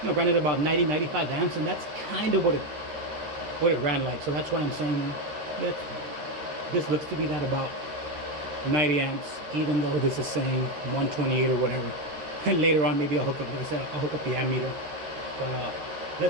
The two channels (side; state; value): left; late; 13 ms